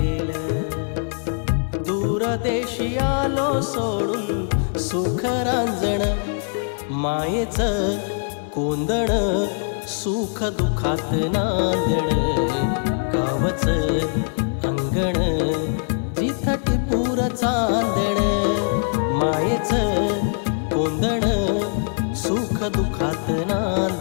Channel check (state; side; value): silent; right; digital silence